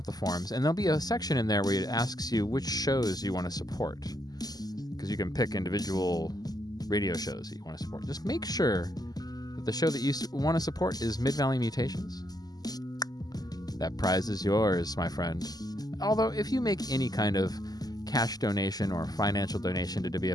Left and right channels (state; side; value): late; right; 0.19 ms